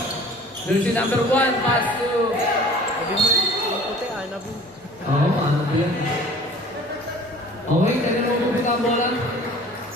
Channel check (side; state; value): both; normal; correlation 0.47